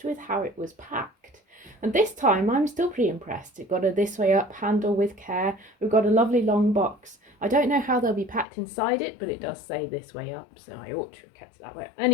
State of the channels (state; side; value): drops out; right; at 8.5 s